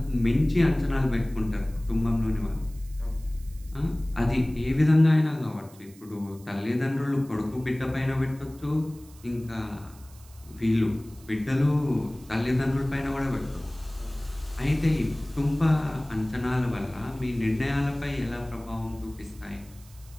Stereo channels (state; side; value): noise; right; hiss, 24 dB below the sound